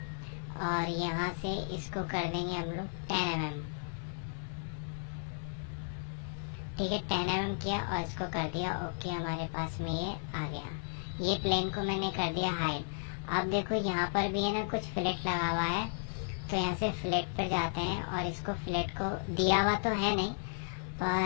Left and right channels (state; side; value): silent; right; digital silence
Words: और यहाँ से इसको कर देंगे हम लोग 10 mm। ठीक है, 10 mm किया और इसको कर दिया ओके। हमारे पास में ये आ गया। ये प्लेन को मैंने कर दिया हाइड। अब देखो यहाँ पर भी है ना कुछ फ्लैट लगा हुआ है, तो यहाँ से फ्लैट पर जाते हैं और इसको फ्लैट को दिया हुआ तो है नहीं,